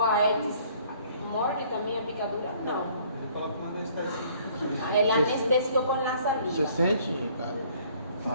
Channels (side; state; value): both; inverted; correlation -0.59